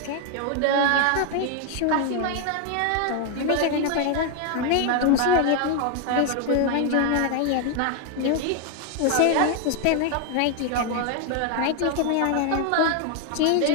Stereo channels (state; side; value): different; both; correlation 0.00